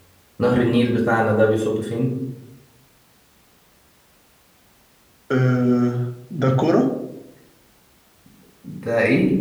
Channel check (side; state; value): both; identical; correlation 1.00